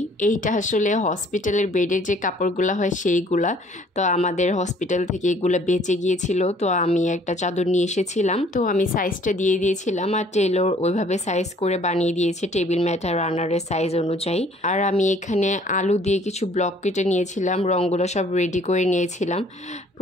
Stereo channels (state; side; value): normal; both; correlation 0.58